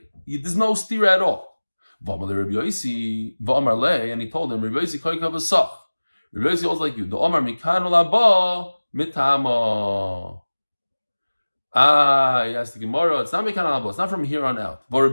There's no steer at all. And he told him, Rabbi Yosef holds like you. The Omar mikanu laba mitama. He asked the Gemara, it's not mikanu laba, it's not from here on out. But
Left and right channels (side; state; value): both; inverted; correlation -1.00